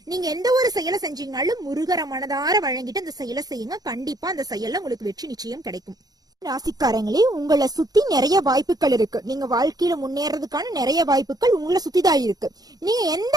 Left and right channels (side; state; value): left; late; 0.19 ms